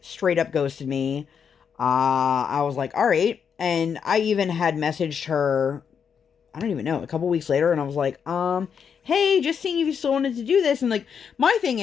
straight up ghosted me. I was like, all right. And I even had messaged her, I don't even know, a couple weeks later, and I was like, hey, just seeing if you still wanted to do this. And, like, my thing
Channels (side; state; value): right; quieter; 7.1 dB